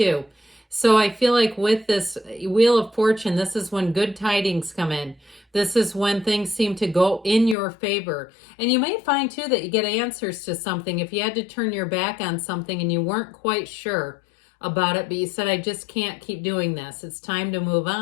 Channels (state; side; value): drops out; right; at 7.6 s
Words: So I feel like with this Wheel of Fortune, this is when good tidings come in. This is when things seem to go in your favor. And you may find too that you get answers to something. If you had to turn your back on something and you weren't quite sure about it, but you said, I just can't keep doing this, it's time to move